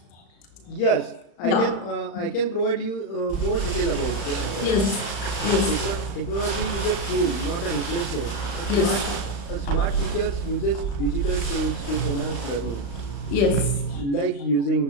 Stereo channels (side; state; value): right; late; 35 ms